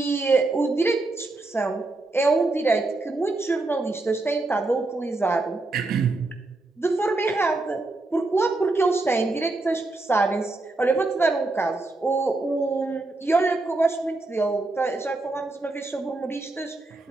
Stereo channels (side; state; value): left; quieter; 3.1 dB